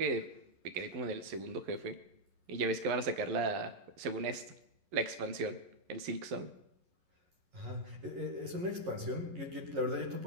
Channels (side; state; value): left; late; 11 ms